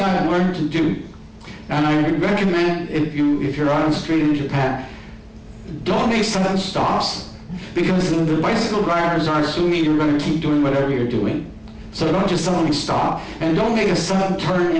I've learned to do, and I would recommend if you're on the street in Japan, don't make sudden stops, because the bicycle drivers are assuming you're going to keep doing whatever you're doing. So don't just suddenly stop, and don't make a sudden turn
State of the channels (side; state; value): both; identical; correlation 1.00